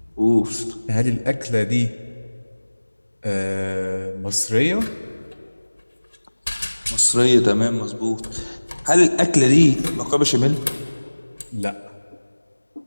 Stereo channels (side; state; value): both; inverted; correlation -1.00